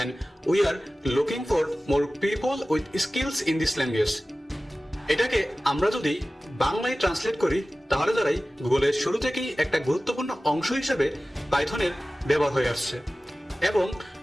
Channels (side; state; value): both; normal; correlation 0.96